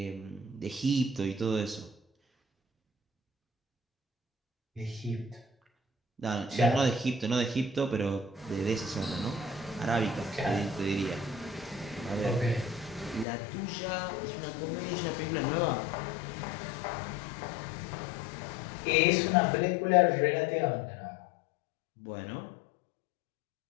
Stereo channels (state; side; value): drops out; right; at 13.2 s